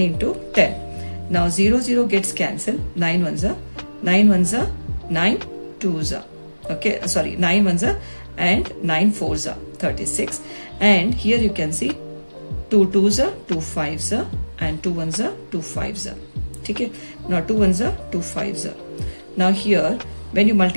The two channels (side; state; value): both; inverted; correlation -1.00